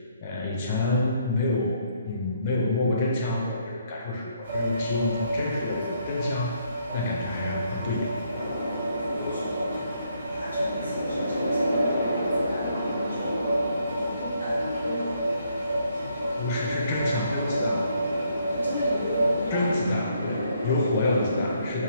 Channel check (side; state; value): both; inverted; correlation -0.71